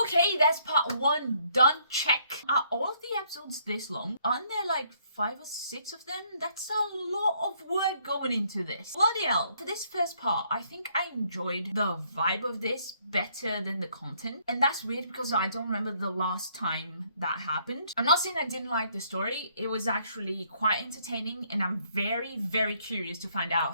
that's part 1 done. Check. Are all of the episodes this long? Aren't there like 5 or 6 of them. That's a lot of work going into this. Bloody hell. For this first part, I think I enjoyed the vibe of this better than the content. And that's weird because I don't remember the last time that happened. I'm not saying I didn't like the story. It was actually quite entertaining and I'm very, very curious to find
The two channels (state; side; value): inverted; both; correlation -0.68